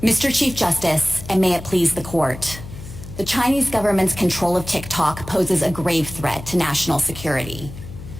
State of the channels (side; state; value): left; noise; hum, 13 dB below the sound